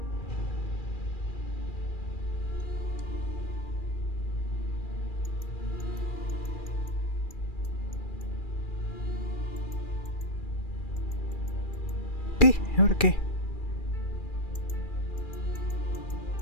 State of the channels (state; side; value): late; right; 2.4 ms